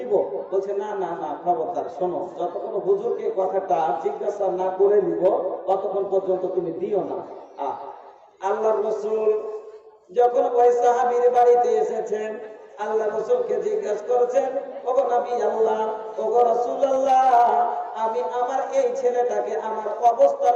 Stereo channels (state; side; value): identical; both; correlation 1.00